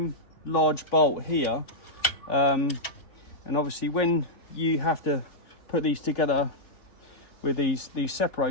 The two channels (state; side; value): late; right; 3.5 ms